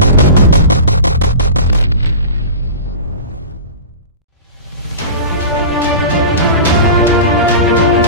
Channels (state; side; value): inverted; both; correlation -0.33